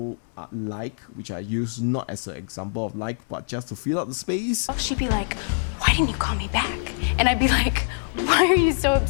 like, which I use not as an example of like, but just to fill out the space. She'd be like, "Why didn't you call me back?" And I'd be like, "Why are you so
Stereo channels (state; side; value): silent; right; 62 dB below the other